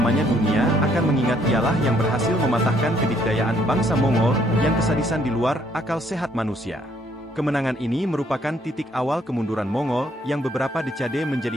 dunia akan mengingat ialah yang berhasil mematahkan kedikdayaan bangsa Mongol yang kesadisan di luar akal sehat manusia. Kemenangan ini merupakan titik awal kemunduran Mongol yang beberapa dekade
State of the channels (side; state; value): both; normal; correlation 0.67